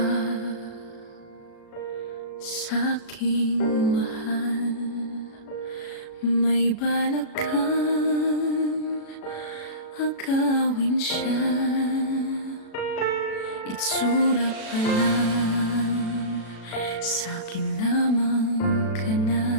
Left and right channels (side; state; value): right; late; 36 ms